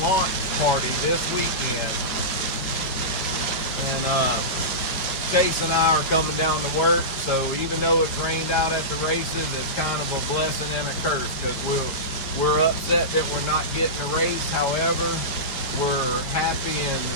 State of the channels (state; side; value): late; right; 5.1 ms